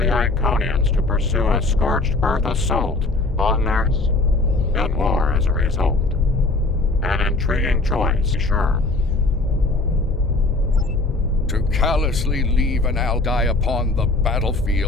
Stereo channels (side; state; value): right; quieter; 3.1 dB